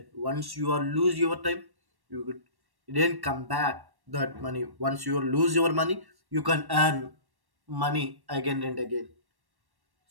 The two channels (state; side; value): late; left; 1.1 ms